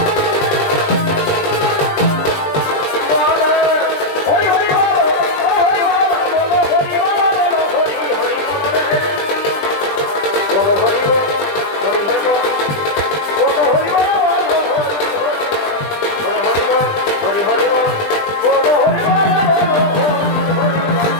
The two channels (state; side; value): late; right; 20 ms